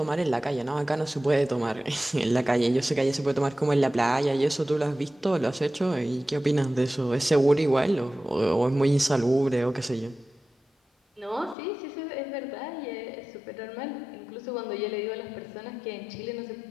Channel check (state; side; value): drops out; right; at 11.6 s